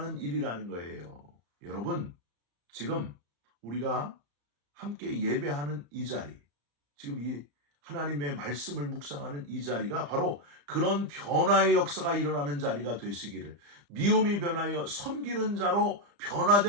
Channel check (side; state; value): left; late; 35 ms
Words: 일이라는 거예요. 여러분, 지금 우리가 함께 예배하는 이 자리, 지금 이 하나님의 말씀을 묵상하는 이 자리가 바로 그런 변화의 역사가 일어나는 자리가 되시기를, 미움이 변하여 섬기는 자로